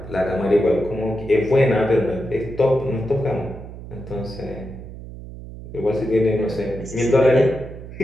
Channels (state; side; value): noise; right; hum, 13 dB below the sound